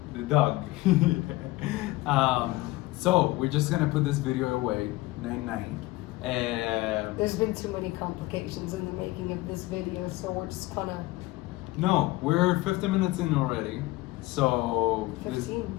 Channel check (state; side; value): quieter; right; 19.6 dB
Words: The dog. So we're just gonna put this video away. 9-9. There's been too many complications in the making of this video, so we're just gonna. No, we're 50 minutes in already. So